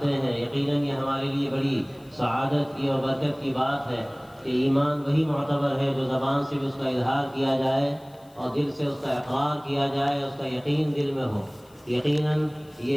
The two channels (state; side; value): noise; left; hiss, 29 dB below the sound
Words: ہیں، یقیناً یہ ہمارے لیے بڑی سعادت کی اور برکت کی بات ہے کہ ایمان وہی معتبر ہے جو زبان سے بھی اس کا اظہار کیا جائے اور دل سے اس کا اقرار کیا جائے، اس کا یقین دل میں ہو. یقیناً یہ